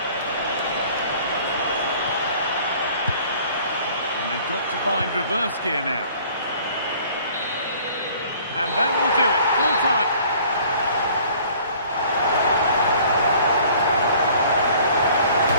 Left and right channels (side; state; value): both; inverted; correlation -0.53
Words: they've got to find reverse gear now. And that will do it, full time.